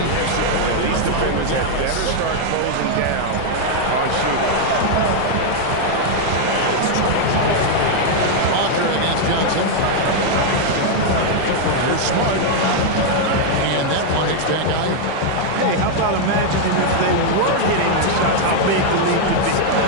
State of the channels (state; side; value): different; both; correlation 0.00